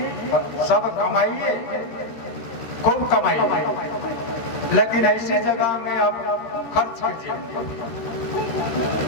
सब कमाइए, खूब कमाइए, लेकिन ऐसी जगह में आप खर्च कीजिए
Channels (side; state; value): right; late; 13 ms